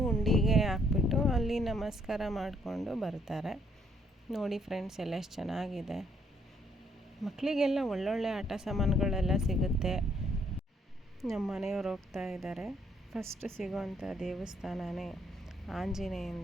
ಹುಂಡಿಗೆ ಹಾಕ್ಬಿಟ್ಟು ಅಲ್ಲಿ ನಮಸ್ಕಾರ ಮಾಡಿಕೊಂಡು ಬರ್ತಾರೆ. ನೋಡಿ ಫ್ರೆಂಡ್ಸ್, ಎಲ್ಲ ಎಷ್ಟು ಚೆನ್ನಾಗಿದೆ. ಮಕ್ಕಳಿಗೆಲ್ಲ ಒಳ್ಳೊಳ್ಳೆ ಆಟ ಸಾಮಾನುಗಳೆಲ್ಲ ಸಿಗುತ್ತೆ. ನಮ್ಮ ಮನೆಯವ್ರು ಹೋಗ್ತಾ ಇದ್ದಾರೆ. ಫಸ್ಟ್ ಸಿಗೋವಂಥ ದೇವಸ್ಥಾನನೇ ಆಂಜನೇಯನ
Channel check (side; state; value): both; normal; correlation 0.70